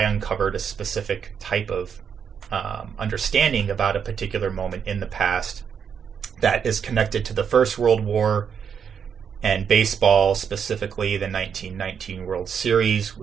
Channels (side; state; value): left; quieter; 7.3 dB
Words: uncovered a specific type of understanding about a particular moment in the past that is connected to the First World War and baseball, specifically the 1919 World Series,